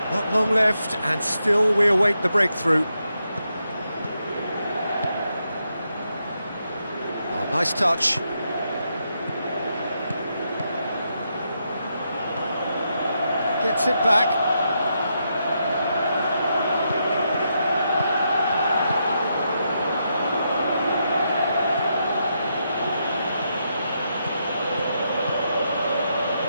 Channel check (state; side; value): inverted; both; correlation -0.82